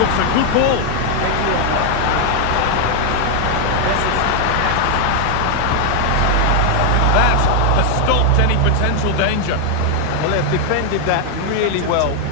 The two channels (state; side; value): different; both; correlation 0.00